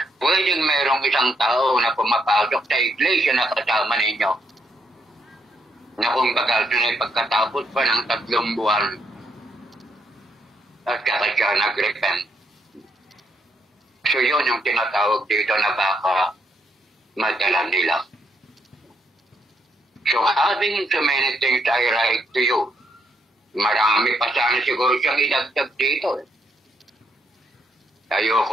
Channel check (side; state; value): both; normal; correlation 0.76